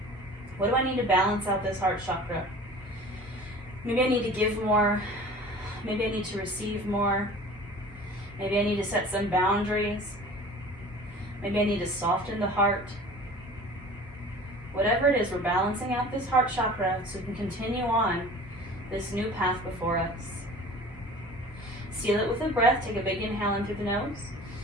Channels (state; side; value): normal; both; correlation 0.42